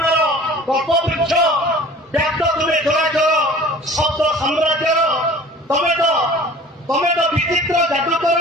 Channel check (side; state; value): both; normal; correlation 0.45